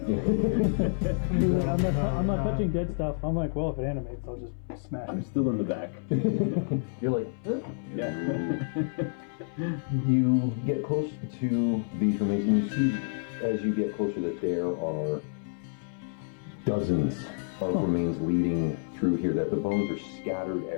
I'm not touching dead stuff. I'm like, well, if it animates, I'll just smash I'm it. still in the back. You're like, huh? Yeah. You get close to these remains, and you see as you get closer that there are dozens of remains leading through here, that the bones are scattered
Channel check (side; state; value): right; silent; 59 dB below the other